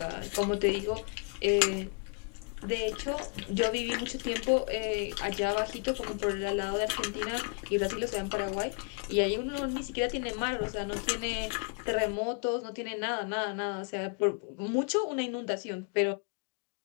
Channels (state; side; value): quieter; right; 38.0 dB